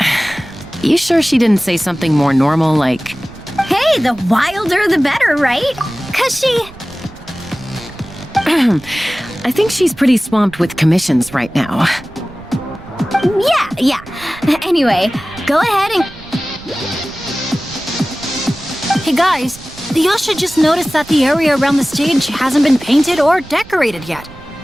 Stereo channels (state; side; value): noise; right; rumble, 20 dB below the sound